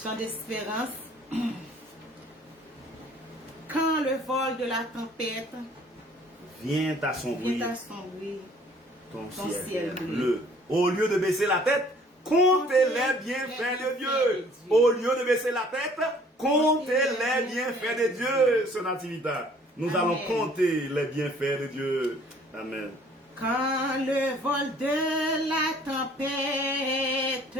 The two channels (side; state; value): both; normal; correlation 0.56